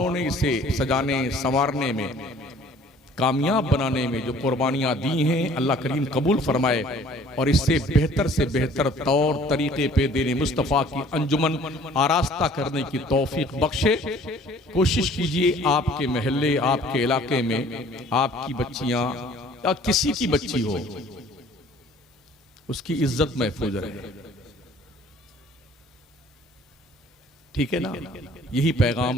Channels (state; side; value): normal; both; correlation 0.54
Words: ने इसे सजाने संवारने में, कामयाब बनाने में जो कुर्बानियां दी हैं, अल्लाह करीम कबूल फरमाए और इससे बेहतर से बेहतर तौर तरीके पे देने मुस्तफ़ा की अंजुमन आरास्ता करने की तौफीक बख्शे। कोशिश कीजिए आपके महल्ले, आपके इलाके में आपकी बच्चियां या किसी की बच्ची हो, उसकी इज्जत महफूज रहे। ठीक है ना? यही